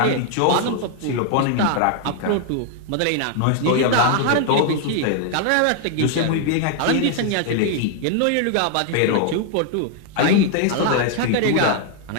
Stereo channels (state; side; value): different; both; correlation 0.00